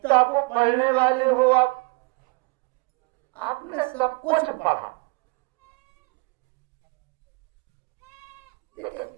को पढ़ने वाले हो आप। आपने सब कुछ पढ़ा,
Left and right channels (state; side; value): quieter; left; 29.4 dB